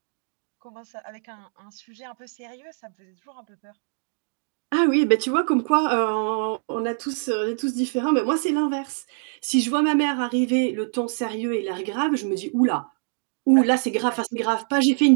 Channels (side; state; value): left; silent; 62 dB below the other